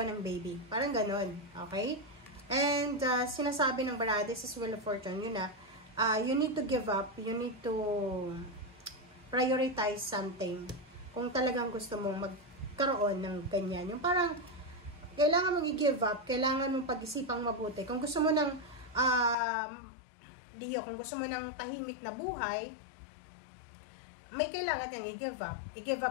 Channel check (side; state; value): right; drops out; at 19.4 s